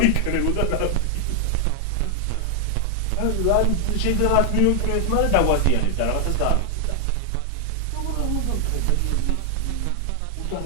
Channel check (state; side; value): different; both; correlation 0.00